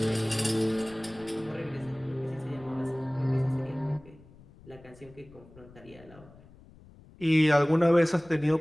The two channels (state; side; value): noise; left; rumble, 23 dB below the sound